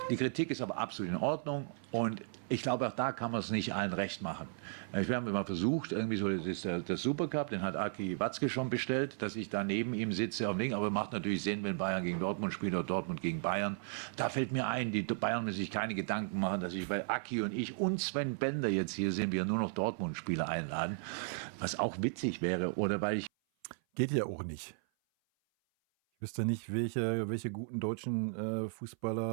Die Kritik ist aber absolut in Ordnung und ich glaube, auch da kann man es nicht allen recht machen. Wir haben immer versucht, irgendwie so, das ist der Supercup, den hat Aki Watzke schon bestellt, dass ich da neben ihm sitze am Ding, aber macht natürlich Sinn, wenn Bayern gegen Dortmund spielt oder Dortmund gegen Bayern. Da fällt mir ein, die Bayern müssen sich keine Gedanken machen, dass ich bei Aki und ich und Sven Bender jetzt hier sind, wir nur noch Dortmund-Spieler einladen, was auch witzig wäre, oder weil ich... Geht ja auch nicht. Ich wüsste nicht, welche guten deutschen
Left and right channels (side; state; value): left; silent; 54 dB below the other